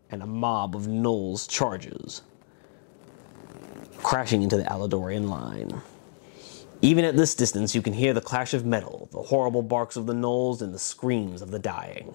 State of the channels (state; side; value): silent; right; digital silence